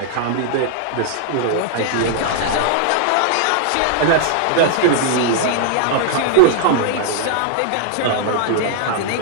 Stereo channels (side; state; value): both; different; correlation -0.01